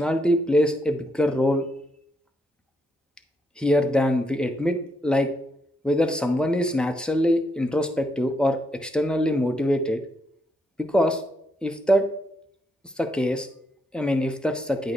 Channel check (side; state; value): both; normal; correlation 0.78